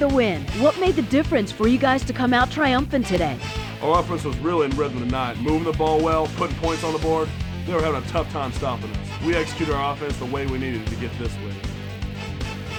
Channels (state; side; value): identical; both; correlation 1.00